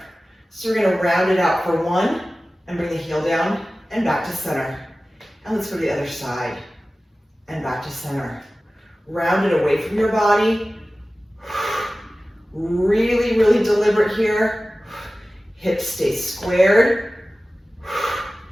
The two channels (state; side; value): normal; both; correlation 0.96